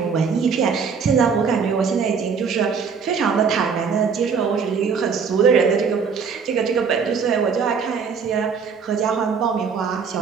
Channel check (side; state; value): left; quieter; 5.9 dB